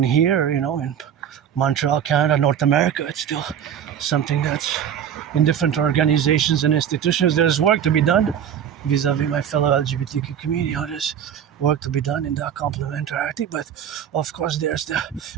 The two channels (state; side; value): quieter; left; 8.9 dB